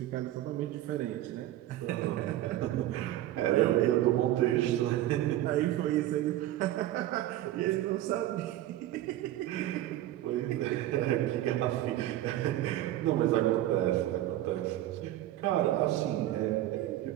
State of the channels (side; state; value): left; quieter; 14.1 dB